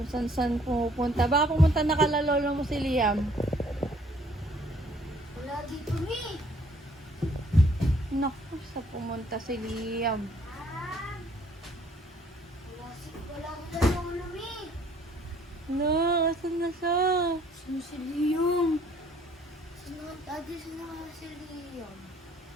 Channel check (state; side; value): normal; both; correlation 0.61